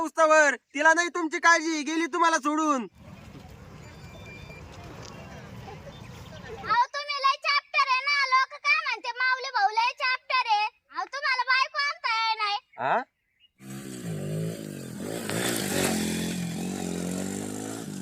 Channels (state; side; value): identical; both; correlation 1.00